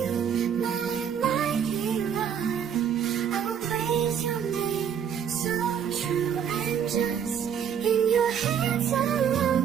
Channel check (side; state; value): left; quieter; 8.2 dB